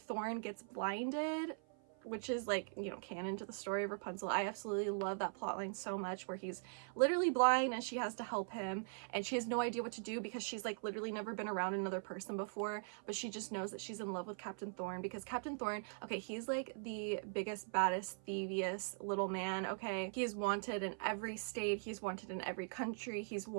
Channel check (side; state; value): left; silent; 50 dB below the other